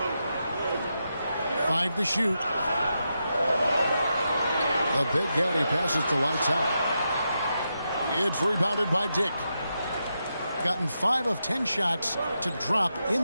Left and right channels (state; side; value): inverted; both; correlation -0.86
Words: 5 to shoot. The Big Daddy passes to lights out. It's rebounded by Dick. Gotten 5 of 10 shots to drop in